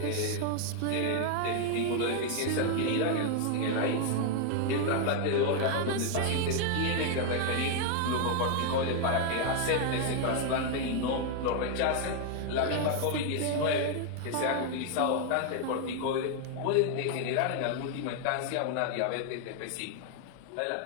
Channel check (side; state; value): both; different; correlation 0.00